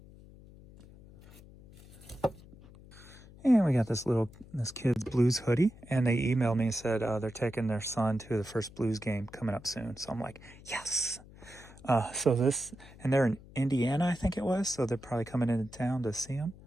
And we got this kid's blues hoodie, and they emailed me and said they're taking their son to the first blues game coming up soon. So I'm like, yes. And they're in Indiana, I think it was, so they're probably coming into town to see them.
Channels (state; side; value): noise; left; hum, 20 dB below the sound